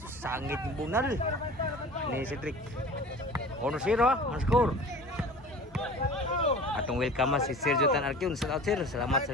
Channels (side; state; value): both; normal; correlation 0.40